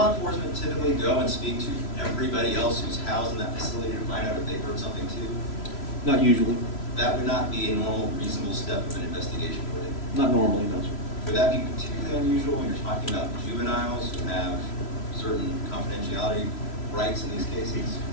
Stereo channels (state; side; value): late; right; 3.0 ms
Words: enforcement typically go and speak to everybody else who's housed in that facility to find out if they've heard something too? Not usually. That would not be a normal, reasonable step of an investigation, would it? Not normally, no, sir. Would that be particularly unusual when you're talking about juveniles who have certain confidentiality rights in these cases?